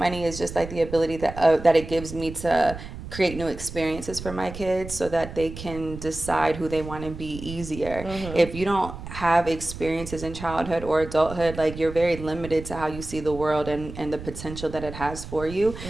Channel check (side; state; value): right; noise; rumble, 11 dB below the sound